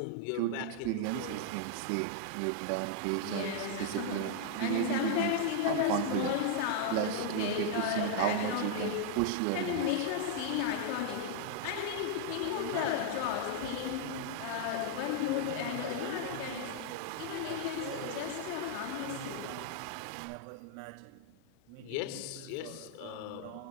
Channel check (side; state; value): both; different; correlation -0.01